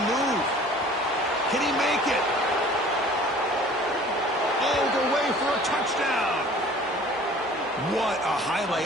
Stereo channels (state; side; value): normal; both; correlation 0.49